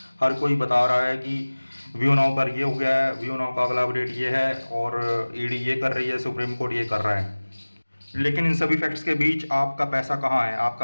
हर कोई बता रहा है कि व्यू नाउ पर ये हो गया है, व्यू नाउ का अगला अपडेट ये है और ईडी ये कर रही है, सुप्रीम कोर्ट ये कर रहा है। लेकिन इन सभी फैक्ट्स के बीच आपका पैसा कहाँ है?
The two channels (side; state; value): both; inverted; correlation -1.00